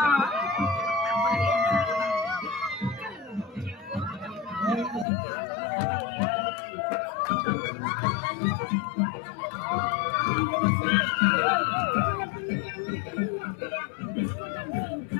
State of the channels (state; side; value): drops out; right; at 5.1 s